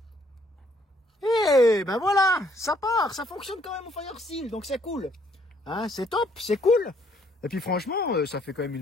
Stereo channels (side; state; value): both; normal; correlation 0.66